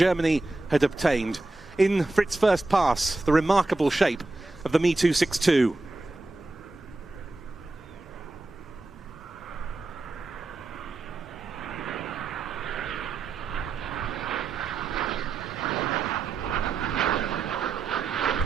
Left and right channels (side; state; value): left; quieter; 3.3 dB